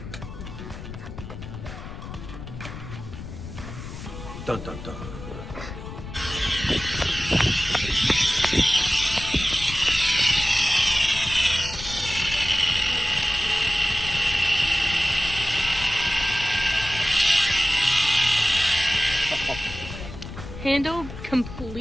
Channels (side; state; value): left; noise; rumble, 11 dB below the sound